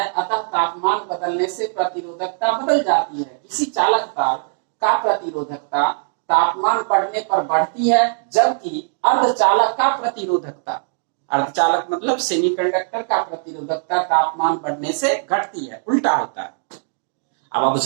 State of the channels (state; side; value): silent; left; digital silence